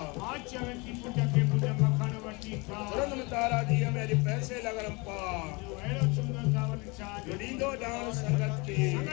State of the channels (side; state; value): right; quieter; 27.4 dB